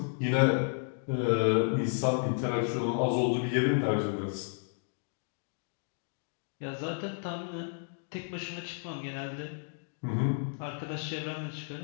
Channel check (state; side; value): silent; right; 56 dB below the other